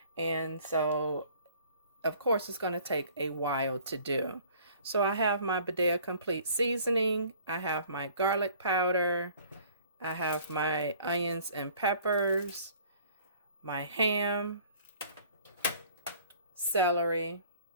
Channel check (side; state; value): both; inverted; correlation -0.53